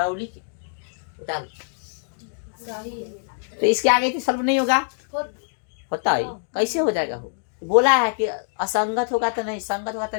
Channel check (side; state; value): right; silent; digital silence